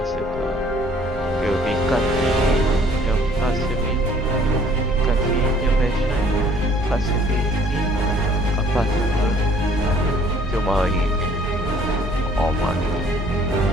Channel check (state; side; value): normal; both; correlation 0.58